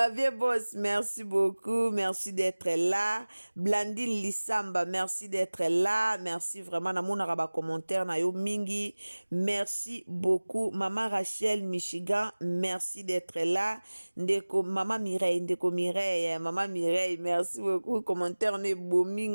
Boss, merci beaucoup. Merci d'être là. Blandine Lissamba, merci d'être là. Merci vraiment. Na mon araba commentaire na yo mingi. Merci beaucoup. Maman Rachel Michigan, merci d'être là. Ndeko Maman Mireille, Ndeko Mireille, Maman Mireille, merci beaucoup. Ne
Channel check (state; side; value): inverted; both; correlation -1.00